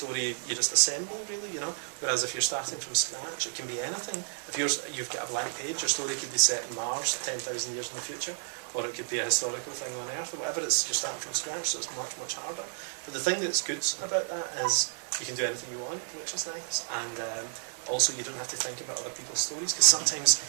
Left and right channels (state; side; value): silent; left; digital silence